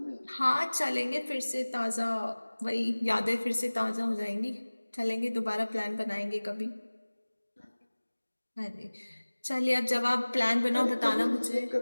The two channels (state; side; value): inverted; both; correlation -1.00